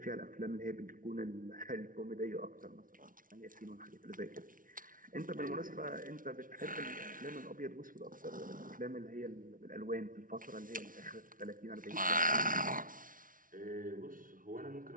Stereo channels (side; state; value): left; late; 0.39 ms